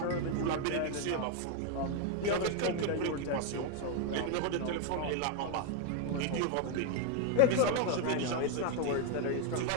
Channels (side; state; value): both; different; correlation 0.01